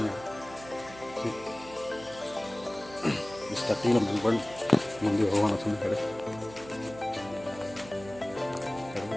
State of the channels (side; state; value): right; noise; hum, 17 dB below the sound